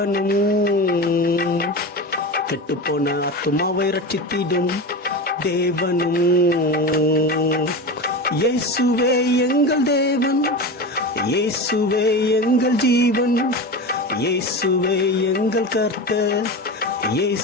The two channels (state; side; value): normal; both; correlation 0.25